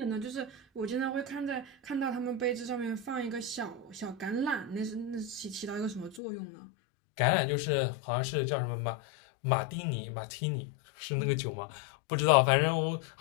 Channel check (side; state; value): right; drops out; at 6.2 s